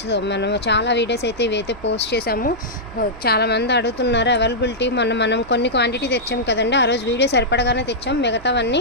మనం చాలా వీడియోస్ అయితే ఇవైతే పోస్ట్ చేసాము. చాలామంది అడుగుతున్నారు అవైలబిలిటీ. మనం కొన్ని క్వాంటిటీ తెచ్చాం కదండి, ఆ రోజు వీడియో సరిపడగానే తెచ్చాం.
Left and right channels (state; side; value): noise; right; hum, 20 dB below the sound